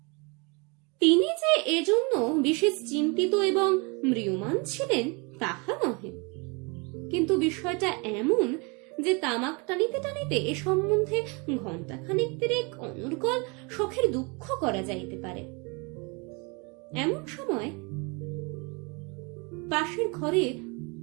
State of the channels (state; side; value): quieter; left; 30.4 dB